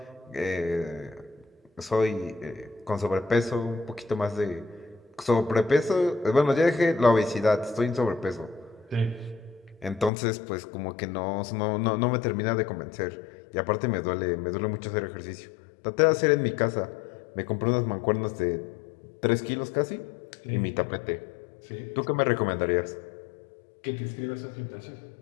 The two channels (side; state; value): right; drops out; at 10.1 s